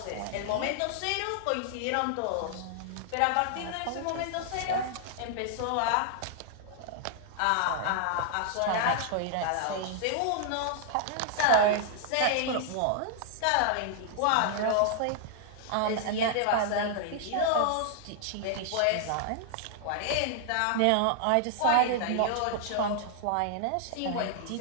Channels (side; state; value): both; different; correlation -0.01